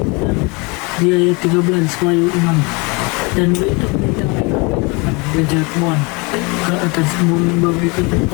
di ayat 13 wahyu 6 dan berita kejatuhan ke atas bumi bagaikan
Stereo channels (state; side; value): quieter; right; 28.8 dB